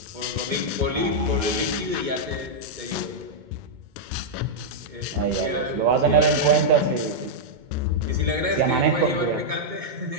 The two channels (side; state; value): left; late; 2.2 ms